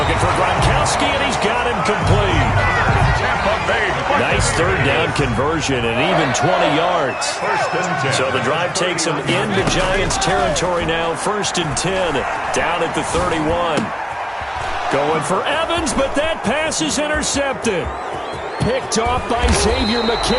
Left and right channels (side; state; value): both; identical; correlation 1.00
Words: for Gronkowski, and he's got him complete. Nice 3rd down conversion and even 20 yards. So the drive takes him into Giants territory now. 1st and 10, down at the 31. Going for Evans, but that pass is intercepted. Picked off by Xavier